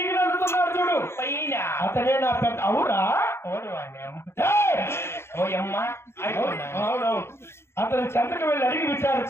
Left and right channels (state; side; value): late; right; 0.12 ms